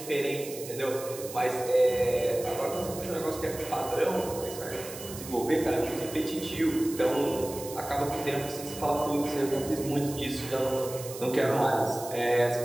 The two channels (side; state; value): right; noise; hiss, 12 dB below the sound